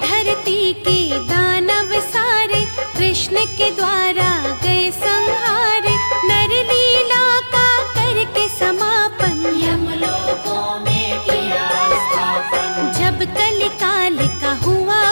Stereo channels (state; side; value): inverted; both; correlation -1.00